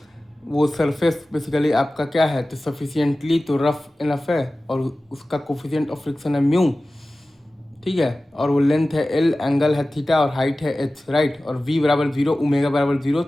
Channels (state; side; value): normal; both; correlation 0.96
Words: वो सरफेस बेसिकली आपका क्या है, तो सफिशिएंटली तो रफ इनफ है और उसका कोफिशिएंट ऑफ फ्रिक्शन है म्यू, ठीक है। और वो लेंथ है एल, एंगल है थीटा और हाइट है एच, राइट। और वी बराबर जीरो, ओमेगा बराबर जीरो।